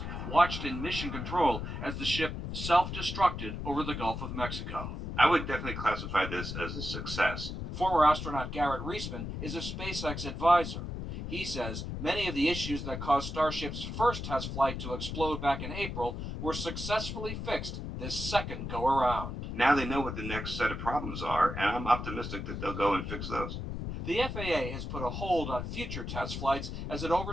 watched in mission control as the ship self-destructed over the Gulf of Mexico. I would definitely classify this as a success. Former astronaut Garrett Reisman is a SpaceX advisor. He says many of the issues that caused Starship's first test flight to explode back in April were successfully fixed this second go-around. Now they know what the next set of problems are, and I'm optimistic that they'll go and fix those. The FAA has put a hold on future test flights as it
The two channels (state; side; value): noise; left; rumble, 5 dB below the sound